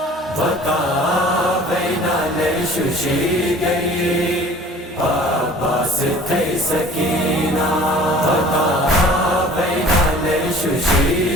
Vaka baina le shushi gayi, Abbas thay sakina. Vaka baina le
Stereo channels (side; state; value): both; normal; correlation 0.47